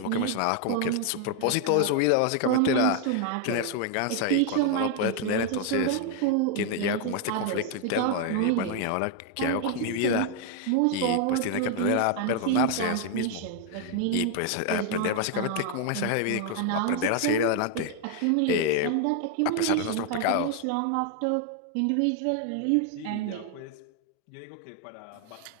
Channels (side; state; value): both; different; correlation 0.00